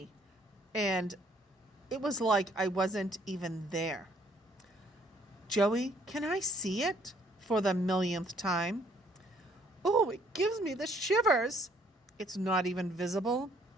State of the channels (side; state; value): both; normal; correlation 0.64